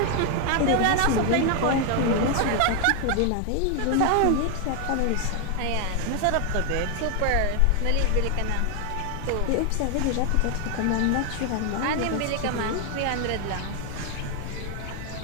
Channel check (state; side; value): different; both; correlation 0.01